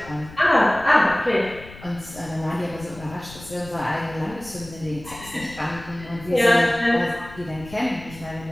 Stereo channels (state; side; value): noise; left; rumble, 17 dB below the sound